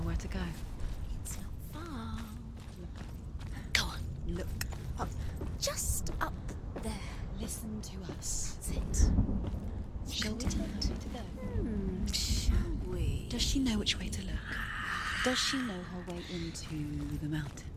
where to go? It's not far. Go on. Look up. Just up there. Listen to us. That's it. Shall we tell her where to go? Shall we? Does she know which way to look? Does she know her way into the mountain?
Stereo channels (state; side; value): identical; both; correlation 1.00